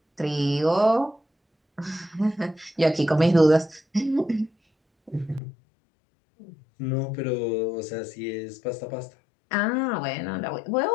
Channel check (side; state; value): right; drops out; at 5.4 s